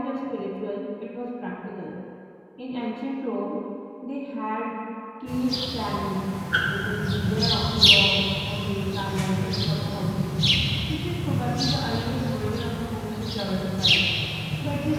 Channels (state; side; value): identical; both; correlation 1.00